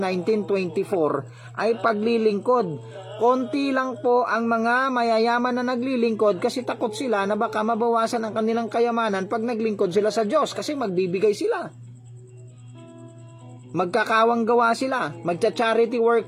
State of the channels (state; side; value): identical; both; correlation 1.00